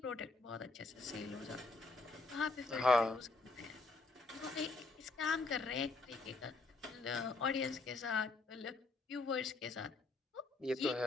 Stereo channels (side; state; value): right; quieter; 3.5 dB